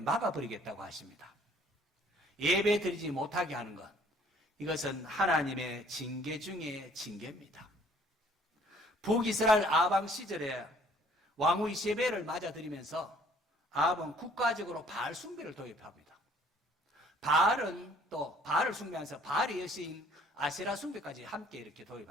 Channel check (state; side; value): normal; both; correlation 0.58